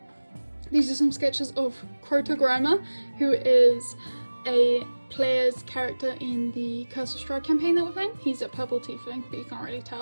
these are some sketches of Crota Grimer, who is a player's character in the Curse of Strahd campaign that we're playing. He's a purple tiefling, but you can't really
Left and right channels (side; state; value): both; inverted; correlation -1.00